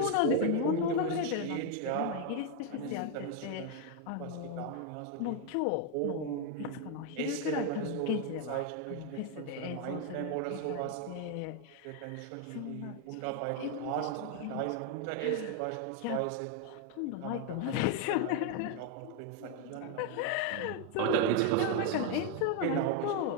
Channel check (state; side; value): different; both; correlation 0.01